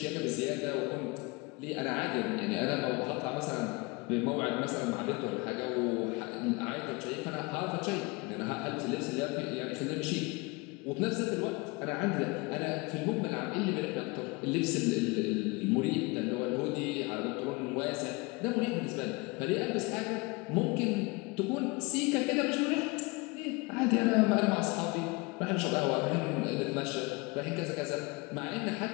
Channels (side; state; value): right; quieter; 26.1 dB